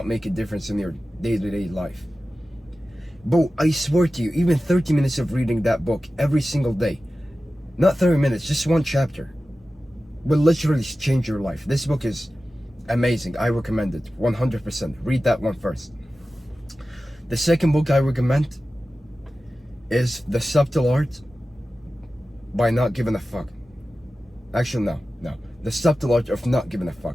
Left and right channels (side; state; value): both; normal; correlation 0.94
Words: make a difference in your day-to-day life. But I swear to you, even 30 minutes of reading that book every single day, not 30 minutes, just one chapter, will literally change your life. This book is amazing. I recommend it 100%. Read that one first. The second book I recommend is The Subtle Art by Not Giving a Fuck. Actually, no. The Subtle Art of Not Giving a